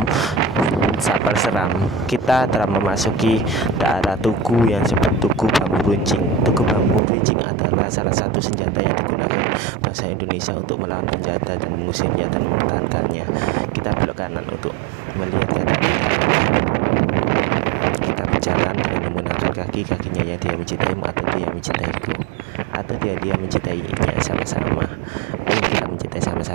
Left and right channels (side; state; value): left; drops out; at 7.0 s